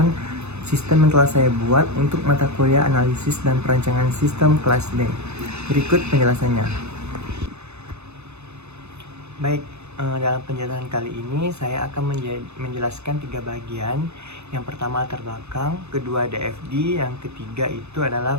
sistem yang telah saya buat untuk mata kuliah analisis dan perancangan sistem kelas D. Berikut penjelasannya. Baik, dalam penjelasan kali ini saya akan menjelaskan 3 bagian. Yang pertama latar belakang, kedua DFD, yang ketiga itu adalah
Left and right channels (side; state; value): left; late; 0.81 ms